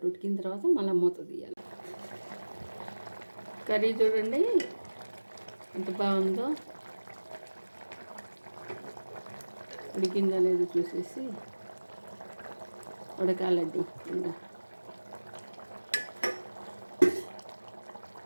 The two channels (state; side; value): inverted; both; correlation -1.00